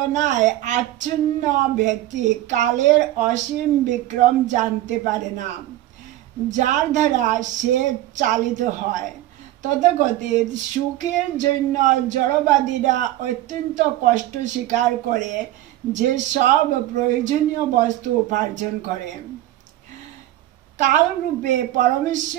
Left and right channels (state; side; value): quieter; left; 14.9 dB